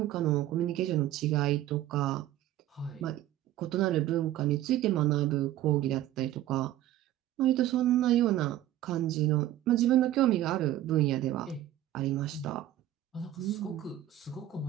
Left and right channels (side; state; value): left; quieter; 13.3 dB